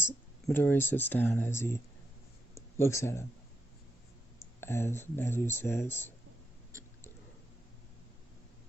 Midoriya sits down, as he looks at him, as Nezu says,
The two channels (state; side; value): normal; both; correlation 0.82